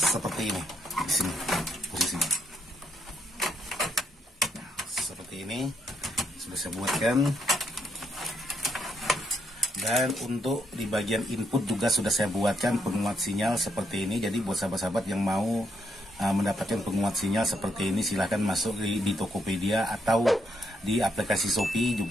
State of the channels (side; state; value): both; normal; correlation 0.76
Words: ini, di sini posisinya. Seperti ini sudah saya buatkan. Dan untuk di bagian input juga sudah saya buatkan penguat sinyal seperti ini. Jadi buat sahabat-sahabat yang mau mendapatkan penguat sinyal seperti ini, silahkan masuk di Tokopedia atau di aplikasi Shopee